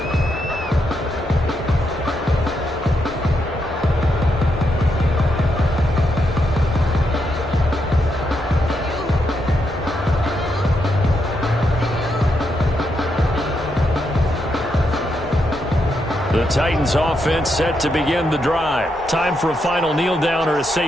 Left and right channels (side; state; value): both; normal; correlation 0.81